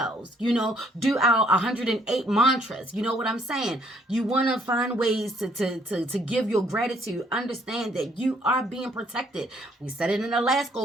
do our 108 mantras. You know what I'm saying? You want to find ways to give your gratitude. Understand that you are being protected. We said it in the last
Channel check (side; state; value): both; normal; correlation 0.66